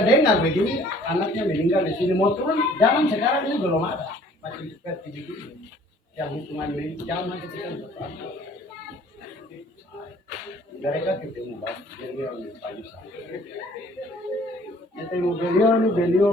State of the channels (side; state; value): both; normal; correlation 0.55